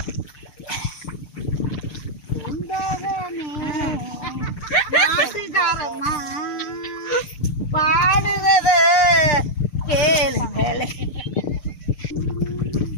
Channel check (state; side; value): late; right; 6.7 ms